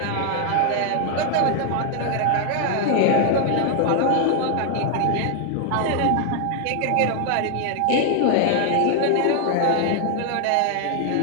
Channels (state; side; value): different; both; correlation 0.00